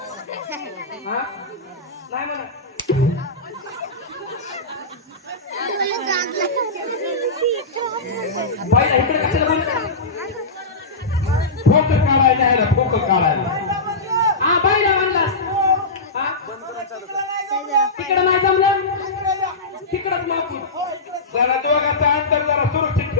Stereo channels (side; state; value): right; quieter; 3.2 dB